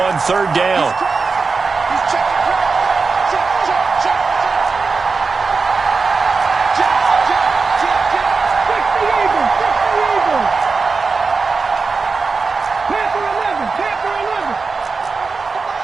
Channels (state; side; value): quieter; left; 4.5 dB